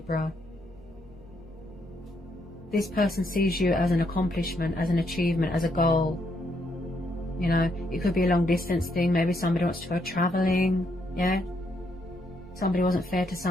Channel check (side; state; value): both; normal; correlation 0.75